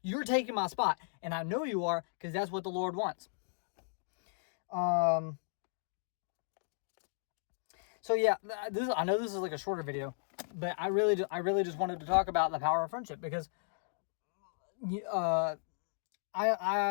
you're taking my spot. And I know you are, because that's what the Lord wants. So yeah, I know this is like a shorter video, but I really just wanted to talk about the power of friendship, because I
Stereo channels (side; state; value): right; silent; digital silence